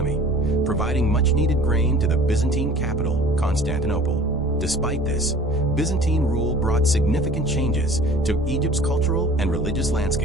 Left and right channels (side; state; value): both; normal; correlation 0.46